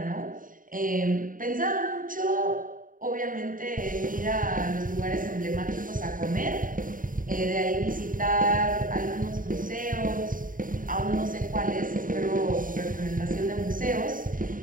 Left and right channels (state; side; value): late; left; 0.39 ms